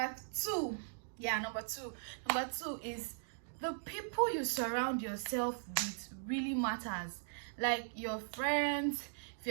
two is the people you surround yourself with really matters. Like your friends, if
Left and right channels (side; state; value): left; silent; digital silence